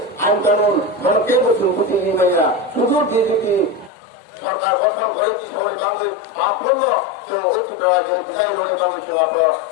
আইন কানুন ভারতীয় প্রতিনিধিরা শুধু বিজেপি সরকার গঠন করে সময় বাংলা মাপন্ন বিদায় রোডে বাংলা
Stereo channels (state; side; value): drops out; right; at 3.9 s